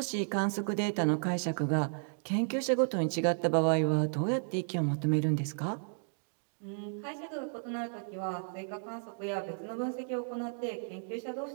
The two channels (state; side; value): silent; left; digital silence